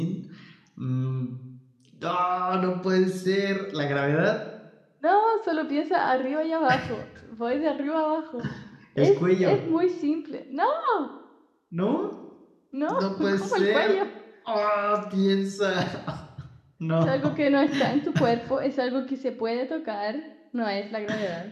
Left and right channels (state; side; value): identical; both; correlation 1.00